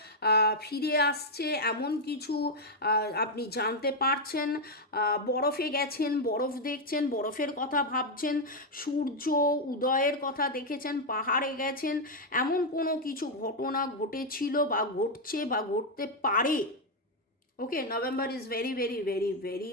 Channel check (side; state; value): both; normal; correlation 0.02